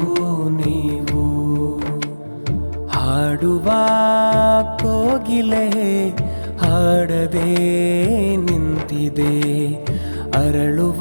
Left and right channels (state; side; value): inverted; both; correlation -1.00